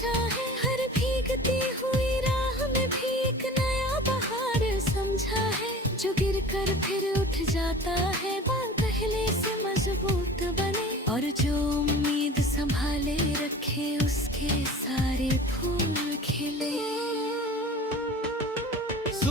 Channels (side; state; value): both; normal; correlation 0.40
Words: है, हर भीगती हुई राह में भी एक नया बहार समझा है। जो गिर कर फिर उठ जाता है, बाल पहले से मजबूत बने, और जो उम्मीद संभाले रखे उसके सारे फूल खिले।